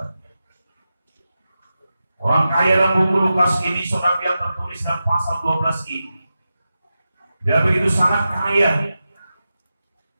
Orang kaya dalam buku Lukas ini, saudara, yang tertulis dalam pasal 12 ini, dia begitu sangat kaya.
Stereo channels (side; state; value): both; inverted; correlation -0.91